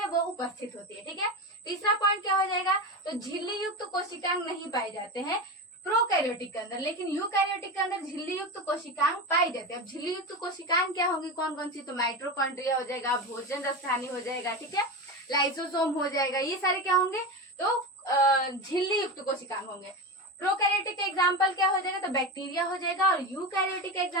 वो उपस्थित होती है। ठीक है, तीसरा पॉइंट क्या हो जाएगा, तो झिल्ली युक्त कोशिकांग नहीं पाए जाते हैं प्रोकैरियोटिक के अंदर, लेकिन यूकैरियोटिक के अंदर झिल्ली युक्त कोशिकांग पाई जाते हैं। अब झिल्ली युक्त कोशिकांग क्या होंगी, कौन कौन सी, तो माइटोकॉन्ड्रिया हो जाएगा, भोजन रसायनी हो जाएगा, ठीक है, लाइसोसोम हो जाएगा, ये सारे क्या होंगे, तो झिल्ली युक्त कोशिकांग होंगे। प्रोकैरियोटिक का एग्जाम्पल क्या हो जाएगा, तो बैक्टीरिया हो जाएगा, और यूकैरियोटिक का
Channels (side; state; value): both; normal; correlation 0.21